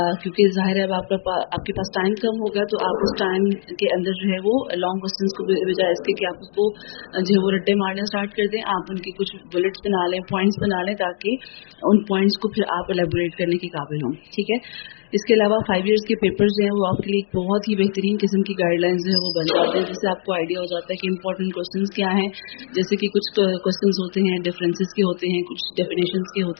क्योंकि जाहिर है अब आपके पास टाइम कम होगा, तो आप उस टाइम के अंदर जो है वो लॉन्ग क्वेश्चंस को बजाय इसके कि आप उसको जो है वो रट्टे मारना स्टार्ट कर दें, आप उनके कुछ बुलेट्स बना लें, पॉइंट्स बना लें, ताकि उन पॉइंट्स को फिर आप एलेबोरेट करने के काबिल हों। ठीक है, इसके अलावा 5 इयर्स के पेपर्स जो हैं वो आपके लिए एक बहुत ही बेहतरीन किस्म की गाइडलाइंस जो है वो बन जाते हैं, जिससे आपको आइडिया हो जाता है कि इंपॉर्टेंट क्वेश्चंस क्या हैं। जैसे कि कुछ क्वेश्चंस होते हैं डिफरेंसेस के होते हैं, कुछ डेफिनेशंस के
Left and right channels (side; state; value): right; silent; digital silence